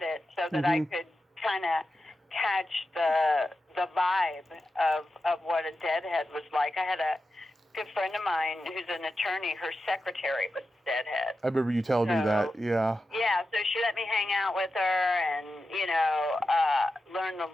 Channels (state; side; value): normal; both; correlation 0.91